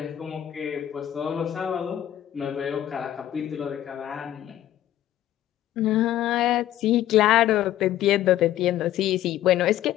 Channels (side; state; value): right; quieter; 12.6 dB